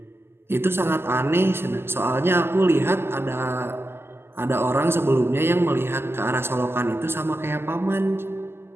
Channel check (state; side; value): late; left; 0.12 ms